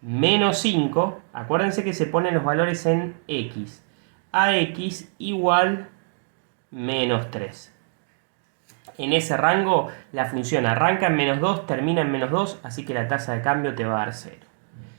menos 5, acuérdense que se ponen los valores en X, a X igual menos 3. En ese rango la función arranca en -2, termina en -2, así que la tasa de cambio te va a dar 0.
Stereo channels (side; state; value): left; silent; 62 dB below the other